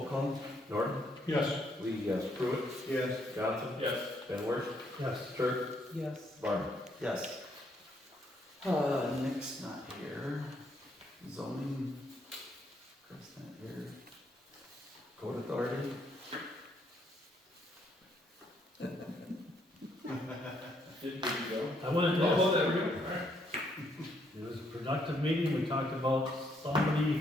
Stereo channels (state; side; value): normal; both; correlation 0.72